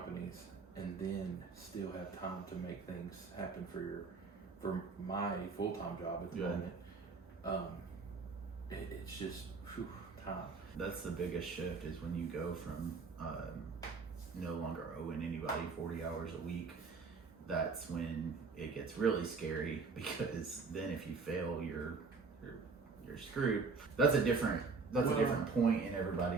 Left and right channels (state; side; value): quieter; left; 4.5 dB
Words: and then still have time to make things happen for my full-time job at the moment. it's just time. That's the biggest shift, is when you go from no longer owing anybody 40 hours a week. That's when it gets really scary, because then if you fail, you're screwed. That's a different point in